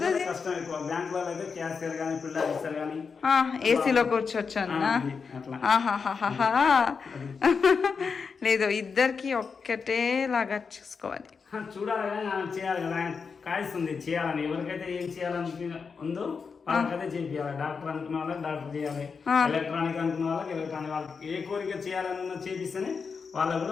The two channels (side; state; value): right; quieter; 5.4 dB